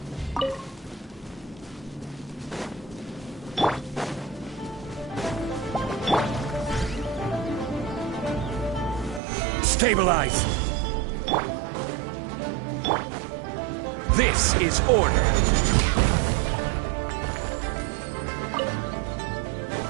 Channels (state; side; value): drops out; left; at 9.2 s